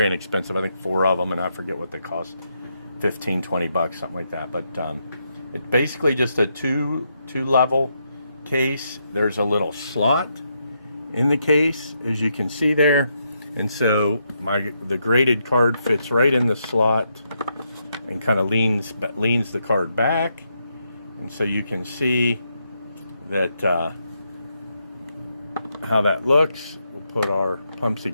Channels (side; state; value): both; inverted; correlation -0.80